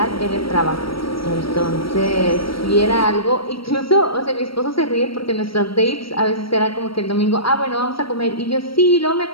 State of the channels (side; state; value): right; late; 0.75 ms